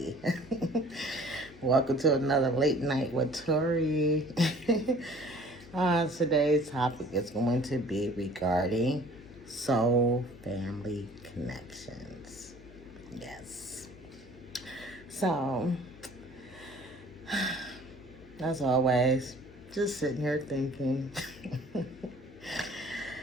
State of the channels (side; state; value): left; noise; hum, 21 dB below the sound